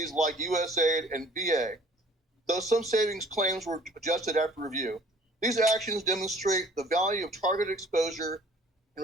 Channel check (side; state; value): both; normal; correlation 0.53